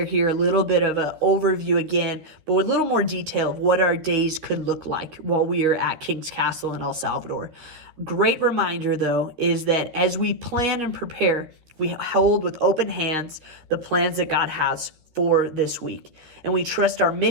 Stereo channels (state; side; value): late; left; 13 ms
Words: here a little bit of an overview again, but with a little more detail of what our days could look like while we are at King's Castle in El Salvador. Great reminder though, is that as we plan and prepare, we hold with open hands the plans that God has for this week. And we trust our